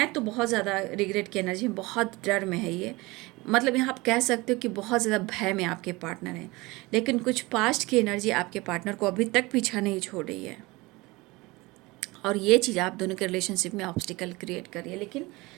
तो बहुत ज़्यादा रिग्रेट की एनर्जी, बहुत डर में है ये। मतलब यहाँ आप कह सकते हो कि बहुत ज़्यादा भय में आपके पार्टनर हैं, लेकिन कुछ पास्ट की एनर्जी आपके पार्टनर को अभी तक पीछा नहीं छोड़ रही है और ये चीज़ आप दोनों के रिलेशनशिप में ऑब्स्टिकल क्रिएट कर रही है। लेकिन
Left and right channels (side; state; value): left; quieter; 22.5 dB